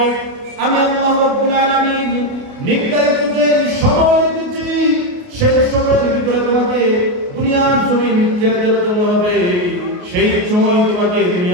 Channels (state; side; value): late; left; 28 ms